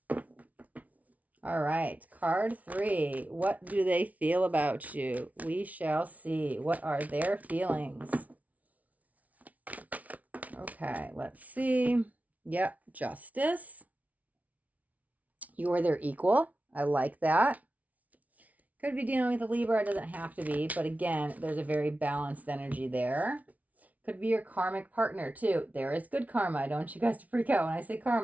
All right. Card 3. What do they feel about you? We shall see. What are their feelings? Okay, let's see. Yep, justice. You're their equal. I like that. Could be dealing with a Libra. It doesn't have to be. But again, there's a very balanced energy there. Could be your karmic partner too. There is good karma. I don't want you guys to freak out when I say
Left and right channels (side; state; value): left; late; 0.071 ms